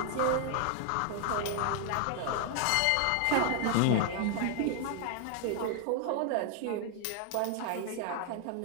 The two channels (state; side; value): different; both; correlation 0.00